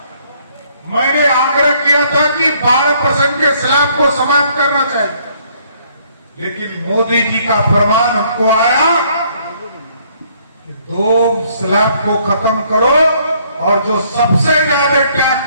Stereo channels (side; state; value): both; inverted; correlation -0.65